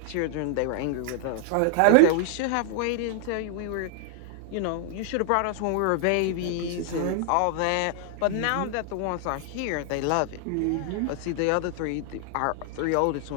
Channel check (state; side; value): different; both; correlation 0.00